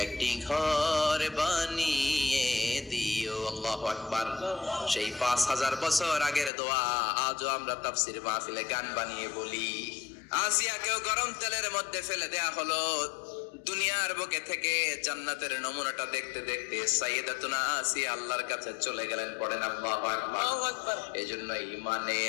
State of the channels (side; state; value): right; drops out; at 6.5 s